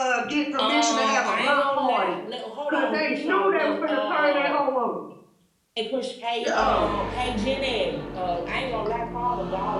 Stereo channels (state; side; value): identical; both; correlation 1.00